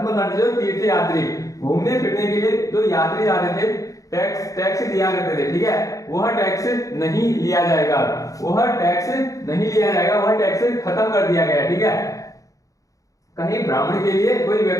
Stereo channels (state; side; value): late; right; 0.16 ms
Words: जो तीर्थ यात्री घूमने फिरने के लिए जो यात्री जाते थे, टैक्स दिया करते थे, ठीक है, वह टैक्स नहीं लिया जाएगा, वह टैक्स खत्म कर दिया गया, ठीक है। कहीं ब्राह्मण के लिए कोई